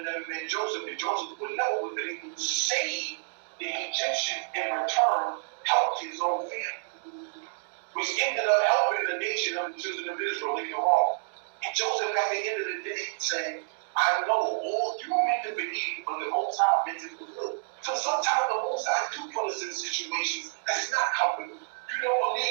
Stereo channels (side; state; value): left; silent; digital silence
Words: never been Joseph, and Joseph would never have been able to save the Egyptians in return, help his own family, which ended up helping the nation of the children of Israel later on. And Joseph, at the end of the day, said, I know all you meant to believe, but the Most High meant to fulfill. So sometimes the Most High do put us in situations that's not comfortable. You don't